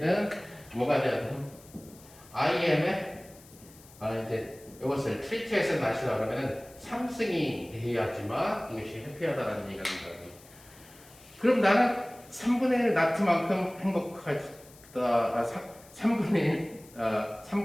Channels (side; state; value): left; noise; hiss, 23 dB below the sound